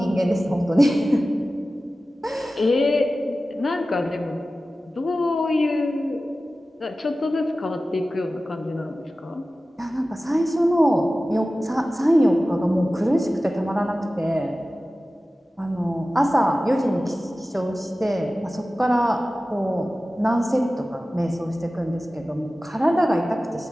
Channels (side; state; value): both; normal; correlation 0.96